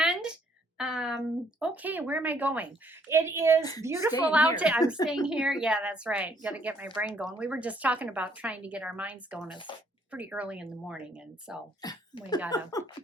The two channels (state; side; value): normal; both; correlation 0.66